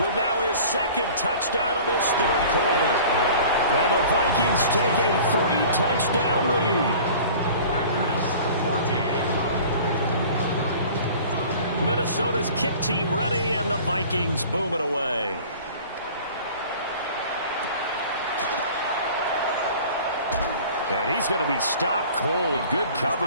now his 2nd touchdown of this 3rd quarter. And the Vikings take a 3-touchdown lead. Minnesota's kick team ready, and the Vikings boom it away. And he's going to be stopped cold. Good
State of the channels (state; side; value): inverted; both; correlation -0.44